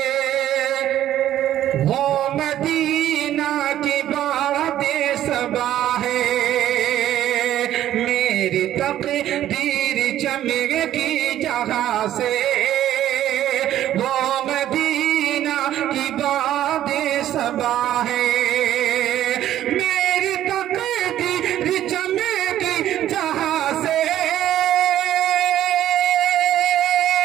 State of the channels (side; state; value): left; quieter; 12.3 dB